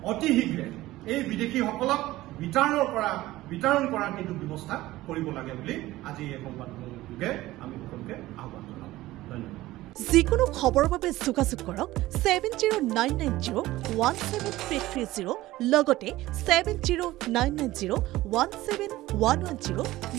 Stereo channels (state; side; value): quieter; left; 17.0 dB